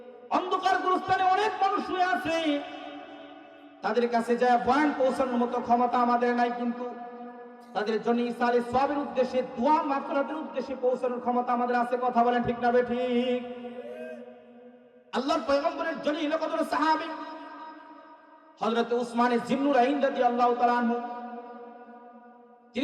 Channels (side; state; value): both; identical; correlation 1.00